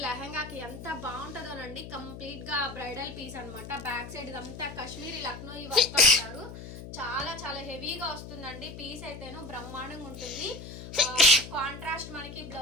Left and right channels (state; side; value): noise; left; hum, 11 dB below the sound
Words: లెహంగాకి ఎంత బాగుంటుందోనండి. కంప్లీట్ గా బ్రైడల్ పీస్ అనమాట. బ్యాక్ సైడ్ ఇదంతా కాశ్మీరీ లక్నో ఈ వర్క్ అంటారు. చాలా హెవీగా వస్తుందండి. పీస్ అయితేను బ్రహ్మాండంగా ఉంటుంది. కాంట్రాస్ట్ మనకి